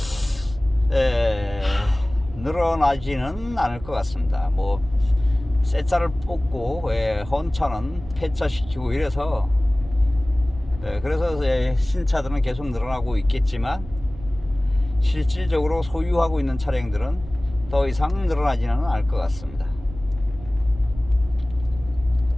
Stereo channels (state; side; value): noise; right; rumble, 15 dB below the sound